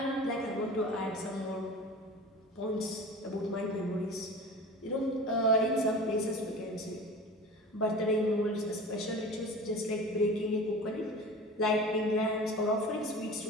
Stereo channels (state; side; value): normal; both; correlation 0.36